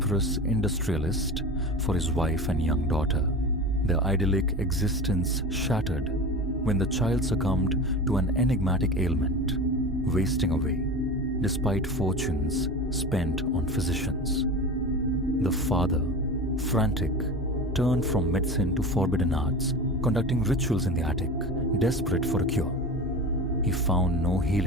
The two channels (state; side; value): normal; both; correlation 0.30